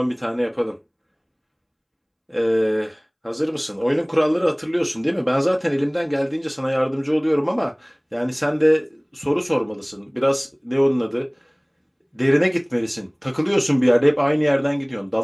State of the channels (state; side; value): identical; both; correlation 1.00